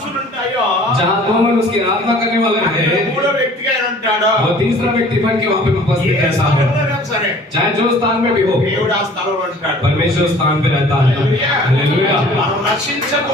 ఉంటాయో, जहाँ दो मन उसकी आराधना करने वाले हैं, మూడో వ్యక్తిగా ఆయన ఉంటాడు. और तीसरा व्यक्ति बन के वहाँ पे उपस्थित रहता है, సరే, चाहे जो स्थान में भी हो, దేవుడు ఆ స్థలంలో ఉంటాడు. परमेश्वर स्थान पे रहता है। हालेलुया। మనం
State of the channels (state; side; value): normal; both; correlation 0.50